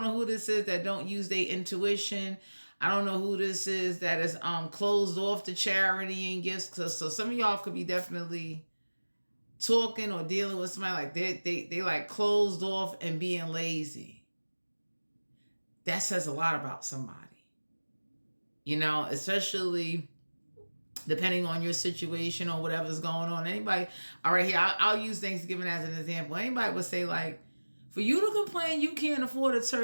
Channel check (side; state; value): both; inverted; correlation -1.00